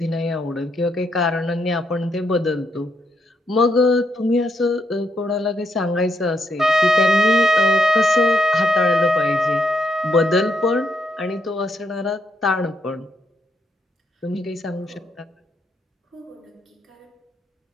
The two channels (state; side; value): normal; both; correlation 0.78